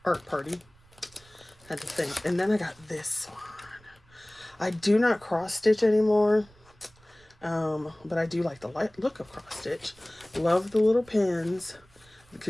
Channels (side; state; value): right; noise; rumble, 28 dB below the sound